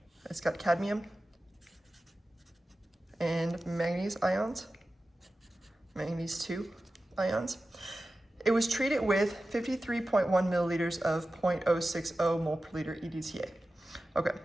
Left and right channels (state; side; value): normal; both; correlation 0.94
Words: It's got cadmium and manganese ions, manganese 2 ions. It was treated with 53.1 milliliters of 0.060 mole per liter EDTA. Okay,